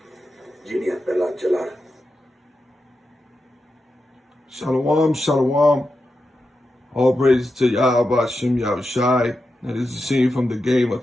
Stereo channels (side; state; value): both; normal; correlation 0.89